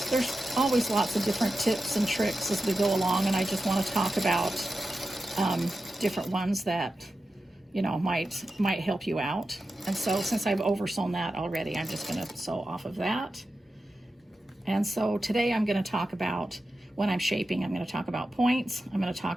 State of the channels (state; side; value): normal; both; correlation 0.91